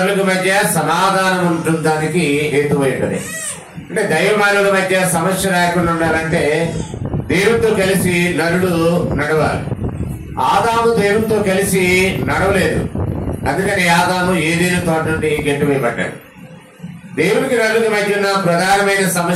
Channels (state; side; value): identical; both; correlation 1.00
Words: మధ్య సమాధానం ఉంటుందానికి హేతువైనది. అంటే దైవమానుల మధ్య సమస్య రాకుండా ఉండాలంటే దేవునితో కలిసి నరుడు నడవాలి. ఆదాము దేవునితో కలిసి నడవలేదు, అందుకని ఆదాము ఏదేని తోట నుండి గెట్టువేయబడ్డాడు. దేవునికి నరులకు మధ్య ఉన్న ప్రధానమైన